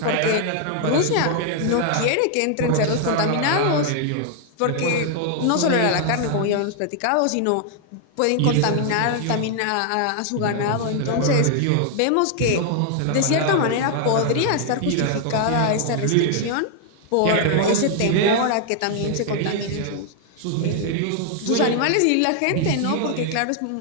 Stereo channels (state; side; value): different; both; correlation 0.00